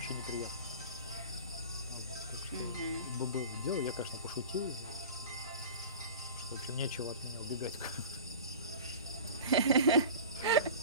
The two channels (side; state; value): both; inverted; correlation -0.37